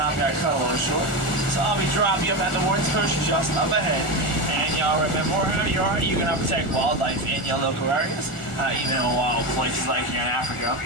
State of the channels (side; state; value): right; late; 1.4 ms